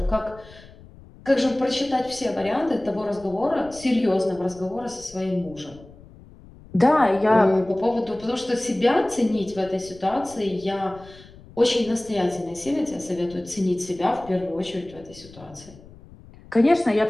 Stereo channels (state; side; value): noise; left; rumble, 21 dB below the sound